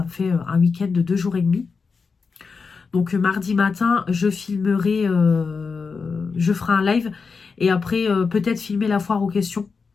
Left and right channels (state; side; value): quieter; right; 5.0 dB